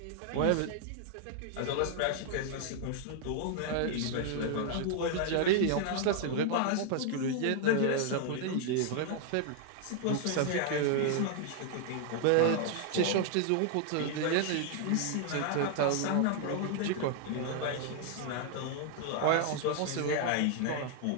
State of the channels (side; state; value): both; different; correlation 0.00